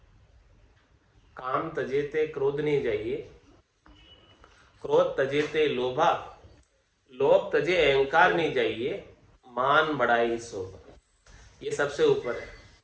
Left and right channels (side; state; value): both; identical; correlation 1.00